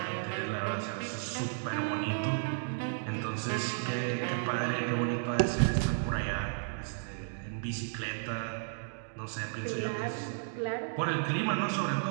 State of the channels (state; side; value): silent; left; digital silence